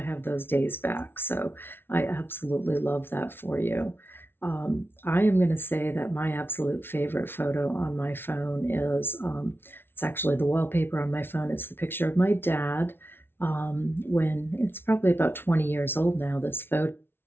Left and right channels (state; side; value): late; right; 0.11 ms